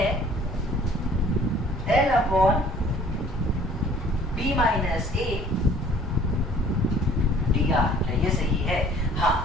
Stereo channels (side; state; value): both; normal; correlation 0.53